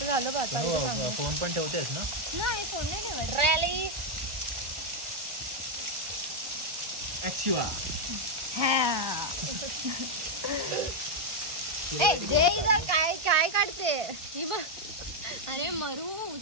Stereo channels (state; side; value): late; left; 1.4 ms